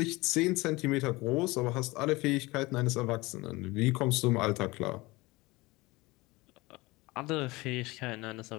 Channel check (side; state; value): right; quieter; 22.2 dB